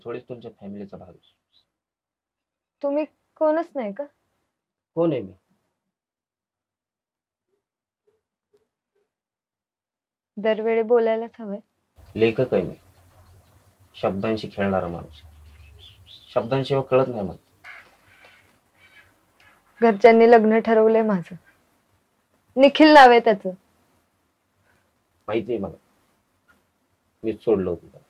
थोडीच तुमच्या फॅमिलीचा भाग आहे. तुम्ही कोणच नाही का? कोण आहे मी? दरवेळी बोलायलाच हवंय. लेखक आहे मी, शब्दांशी खेळणारा माणूस. शब्दांशिवाय कळत नाही मला. घरच्यांनी लग्न ठरवलंय माझं. निखिल नाव आहे त्याचं. माहिती आहे मला, मीच सोडलं होतं त्याला.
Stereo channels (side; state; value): both; identical; correlation 1.00